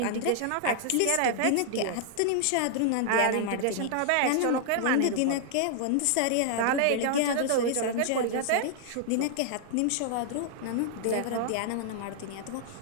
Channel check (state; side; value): different; both; correlation -0.01